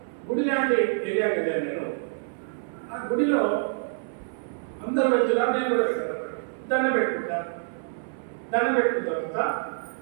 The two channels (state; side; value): silent; left; 60 dB below the other